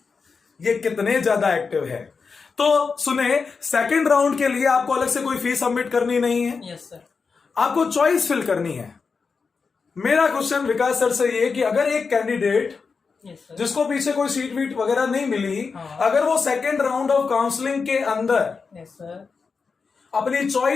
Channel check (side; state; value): right; quieter; 5.0 dB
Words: ये कितने ज्यादा एक्टिव है। तो सुने, सेकेंड राउंड के लिए आपको अलग से कोई फीस सबमिट करनी नहीं है। Yes sir. आपको चॉइस फिल करनी है। मेरा क्वेश्चन विकास सर से ये कि अगर एक कैंडिडेट जिसको पीछे कोई सीट वीट वगैरह नहीं मिली, अगर वो सेकेंड राउंड ऑफ काउंसलिंग के अंदर अपनी